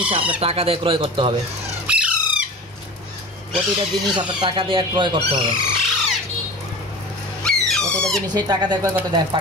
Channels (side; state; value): both; normal; correlation 0.35